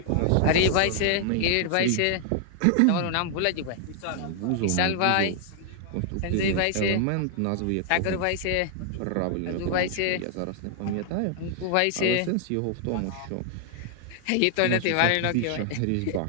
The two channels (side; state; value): both; different; correlation 0.00